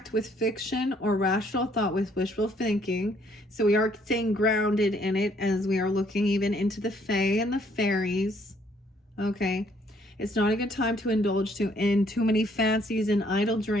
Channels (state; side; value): normal; both; correlation 0.66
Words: with fiction or rational thought with wishful thinking. So we are staying grounded in it as we are looking even into the fae and the fairies. Okay. It's not a good time to indulge in too many fancies and idle